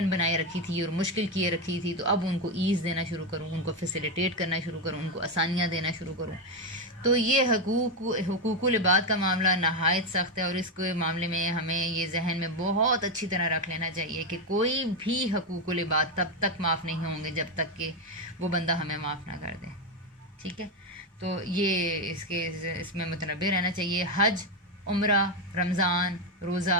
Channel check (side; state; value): both; normal; correlation 0.08